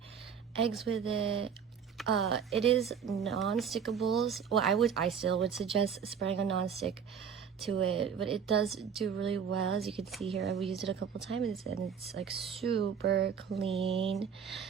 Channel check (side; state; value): left; quieter; 7.3 dB